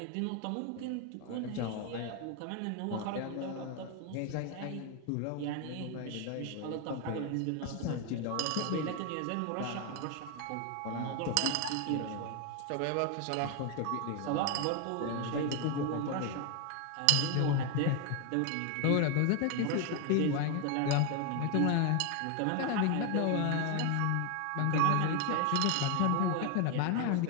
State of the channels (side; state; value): both; different; correlation 0.01